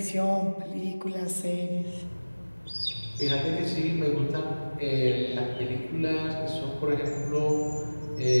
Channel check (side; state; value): both; inverted; correlation -1.00